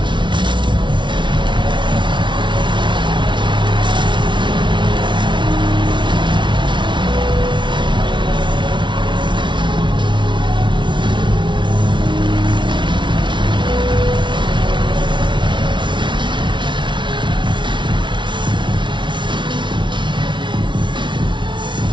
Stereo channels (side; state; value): left; late; 0.24 ms